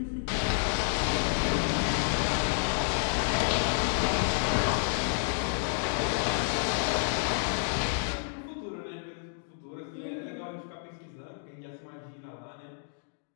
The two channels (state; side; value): silent; right; digital silence